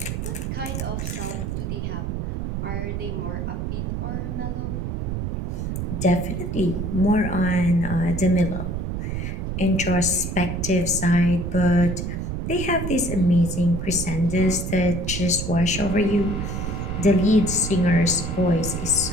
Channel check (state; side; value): noise; right; rumble, 3 dB below the sound